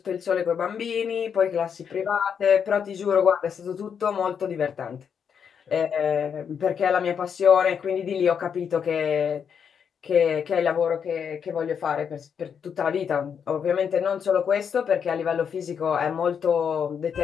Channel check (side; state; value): right; quieter; 7.2 dB